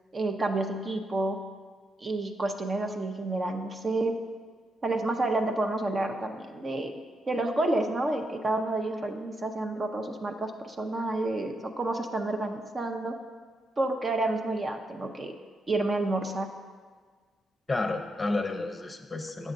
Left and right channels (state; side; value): normal; both; correlation 0.82